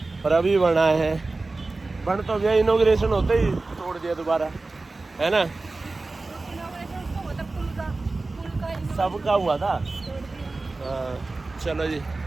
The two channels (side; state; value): left; quieter; 3.4 dB